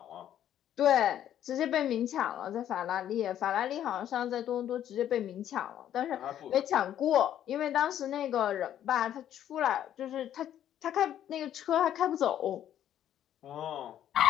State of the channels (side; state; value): right; quieter; 10.9 dB